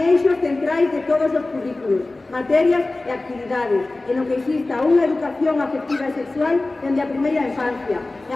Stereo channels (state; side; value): quieter; right; 3.0 dB